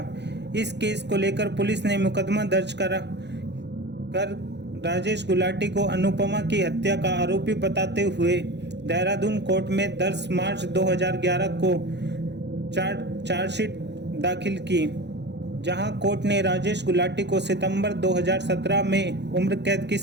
इस केस को लेकर पुलिस ने मुकदमा दर्ज कर राजेश गुलाटी को अनुपमा की हत्या का आरोपी बताते हुए देहरादून कोर्ट में 10 मार्च 2011 को चार्जशीट दाखिल की, जहां कोर्ट ने राजेश गुलाटी को सितंबर 2017 में उम्र कैद की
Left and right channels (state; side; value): late; left; 0.50 ms